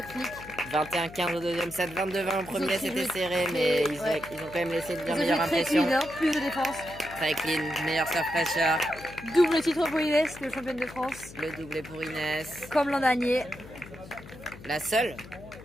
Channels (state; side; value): noise; left; hum, 17 dB below the sound